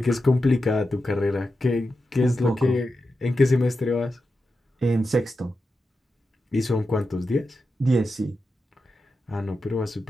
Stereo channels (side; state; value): both; normal; correlation 0.90